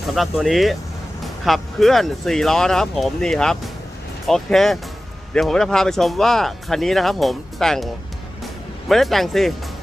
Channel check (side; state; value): both; normal; correlation 0.96